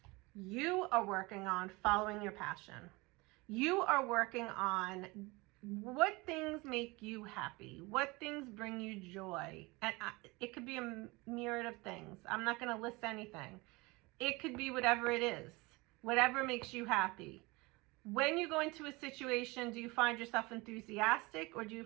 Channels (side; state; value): left; quieter; 24.2 dB